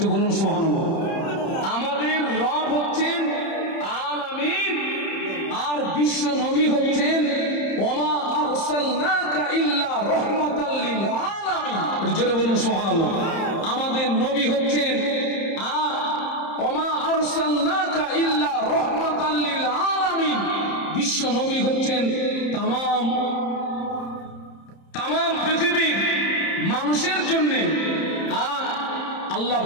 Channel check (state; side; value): late; right; 30 ms